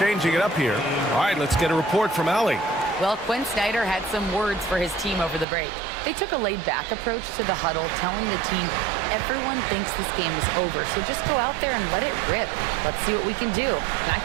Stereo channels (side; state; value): left; drops out; at 5.5 s